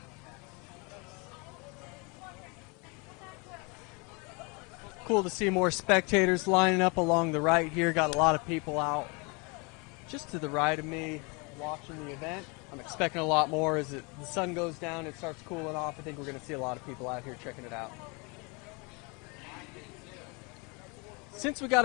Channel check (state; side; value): quieter; right; 30.5 dB